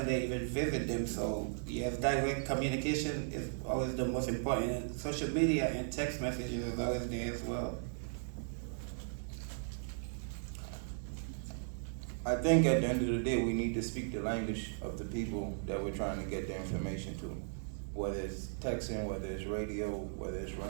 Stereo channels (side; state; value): left; silent; digital silence